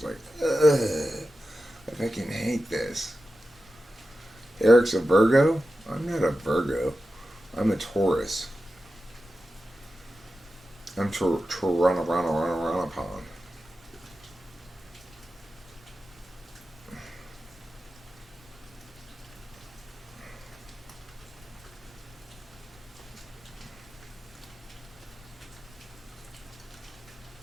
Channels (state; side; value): normal; both; correlation 0.92